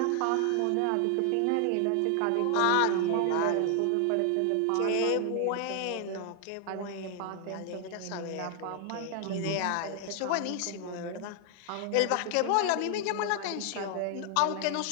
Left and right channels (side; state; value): both; different; correlation 0.00